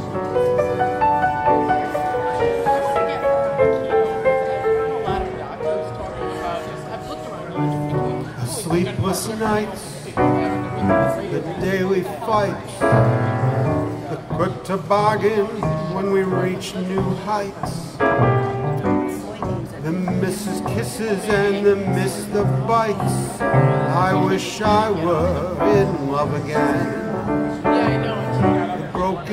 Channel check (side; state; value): both; identical; correlation 1.00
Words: Sleepless nights, the daily fights, the quick toboggan when we reach new heights, the misses kisses and the miss the bites. I wish I were in love again. The